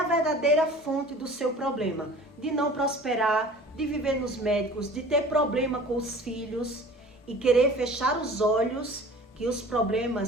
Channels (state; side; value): normal; both; correlation 0.44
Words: verdadeira fonte do seu problema. De não prosperar, de viver nos médicos, de ter problema com os filhos e querer fechar os olhos que os